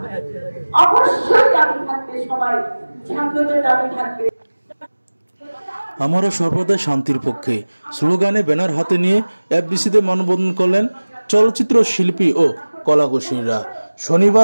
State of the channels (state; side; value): inverted; both; correlation -1.00